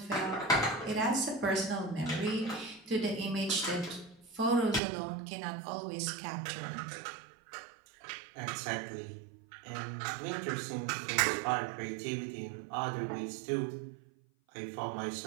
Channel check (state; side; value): drops out; left; at 4.8 s